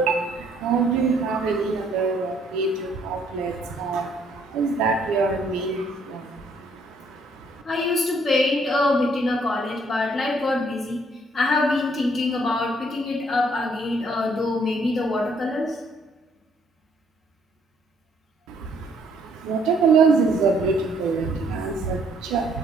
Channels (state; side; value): normal; both; correlation 0.66